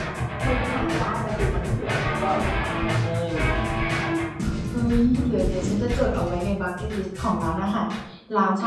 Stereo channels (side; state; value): both; identical; correlation 1.00